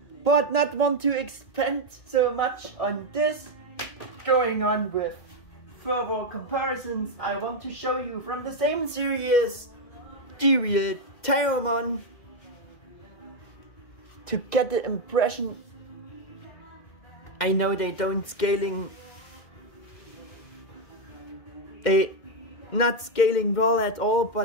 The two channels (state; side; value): late; right; 2.1 ms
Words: But not want to expand so much on this. Going on with further comparisons, I want to show you from the same series the real Digimon, to get the impression. I know they don't not scaling well at all,